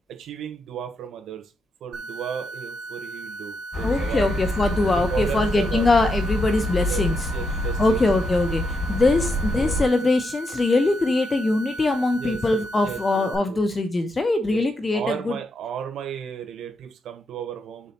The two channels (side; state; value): both; normal; correlation 0.82